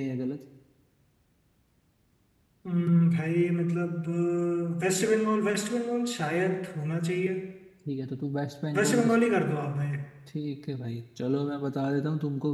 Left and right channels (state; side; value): identical; both; correlation 1.00